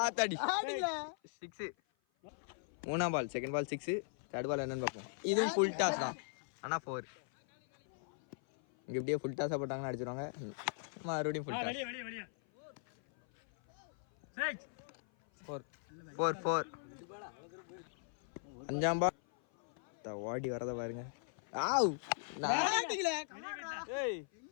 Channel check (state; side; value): silent; right; 52 dB below the other